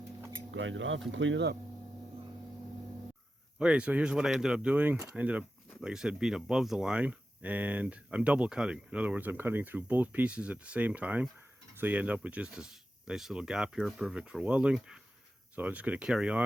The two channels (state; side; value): normal; both; correlation 0.92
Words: Grind it off and clean it up. Okay, so here's what I ended up doing. I ended up, like I said, being above the line, and I'm double cutting. In other words, I'm cutting through both pieces at the same time, so you end up with just this nice little gap here, perfect for welding. So I'm just going to carry